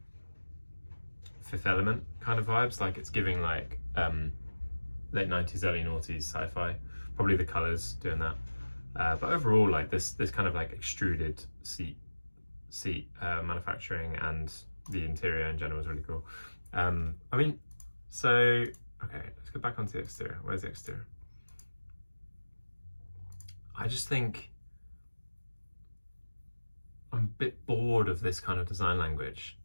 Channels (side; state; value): both; inverted; correlation -1.00